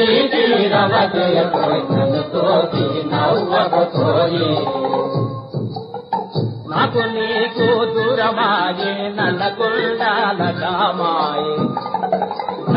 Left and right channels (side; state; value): both; identical; correlation 1.00